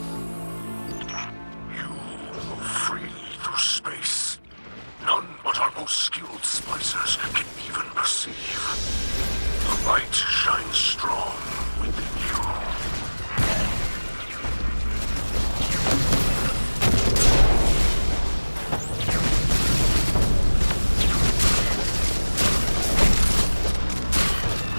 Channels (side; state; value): both; inverted; correlation -1.00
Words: You move freely through space. None but our most skilled splicers can even perceive. The light shines strong within you.